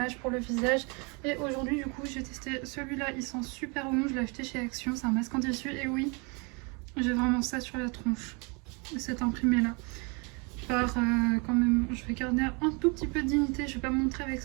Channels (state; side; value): quieter; left; 31.6 dB